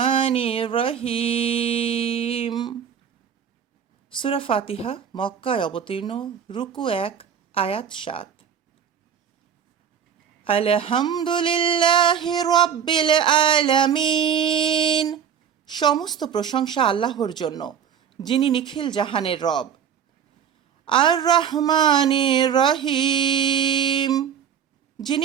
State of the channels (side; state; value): left; quieter; 8.3 dB